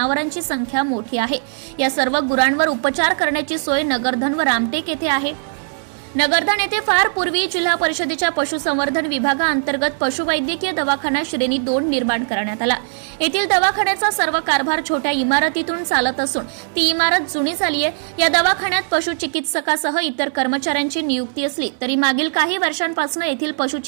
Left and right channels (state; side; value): silent; left; digital silence